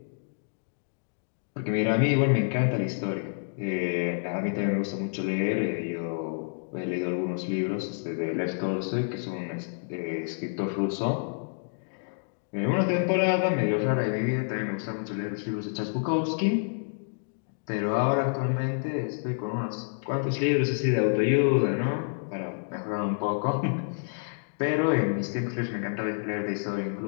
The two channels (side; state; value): right; silent; digital silence